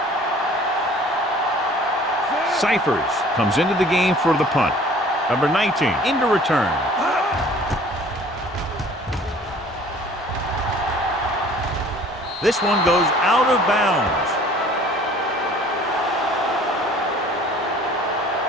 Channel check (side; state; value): both; normal; correlation 0.51